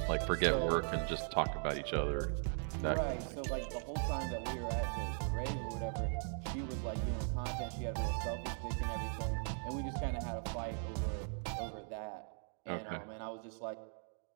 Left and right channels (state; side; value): silent; left; 52 dB below the other